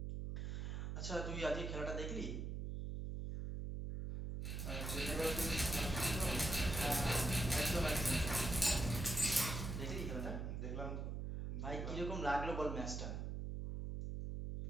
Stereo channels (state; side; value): noise; right; hum, 3 dB below the sound